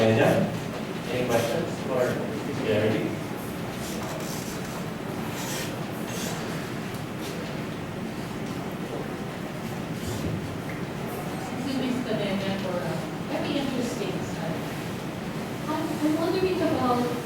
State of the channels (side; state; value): both; identical; correlation 1.00